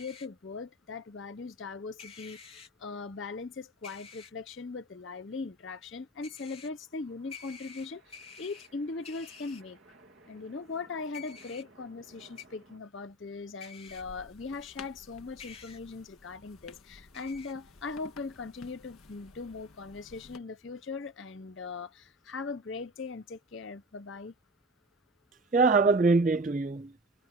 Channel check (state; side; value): normal; both; correlation 0.34